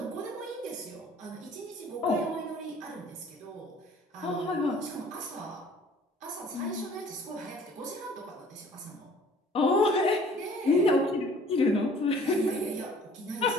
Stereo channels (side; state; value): both; normal; correlation 0.53